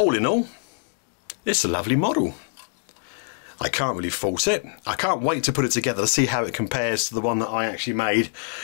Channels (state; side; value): silent; right; digital silence